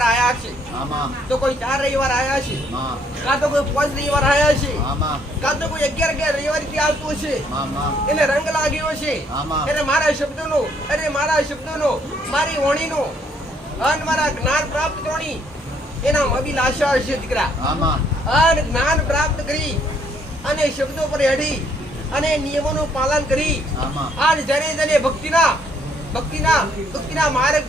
આયા છે, તો કોઈ 4 રવિવાર આયા છે, કાં તો કોઈ 5 રવિવાર આયા છે, કાં તો કોઈ 11 રવિવાર થી આવતું છે. એને રંગ લાગ્યો છે, એને મારા શબ્દોનો મારી વાણીનો અને મારા જ્ઞાન પ્રાપ્ત કરવાની એના અભિલાષા છે દીકરા. અને જ્ઞાન પ્રાપ્ત કરી અને શબ્દો પર હેડી અને નિયમોનું પાલન કરી અને જયારે ભક્તિના માર્ગ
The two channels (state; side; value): normal; both; correlation 0.67